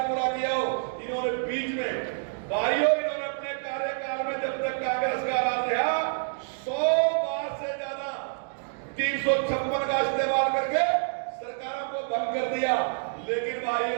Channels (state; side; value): silent; left; digital silence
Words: पूरा किया हो। इन्होंने बीच में भाइयों इन्होंने अपने कार्यकाल में जब तक कांग्रेस का राज रहा 100 बार से ज्यादा 356 का इस्तेमाल करके सरकारों को भंग कर दिया, लेकिन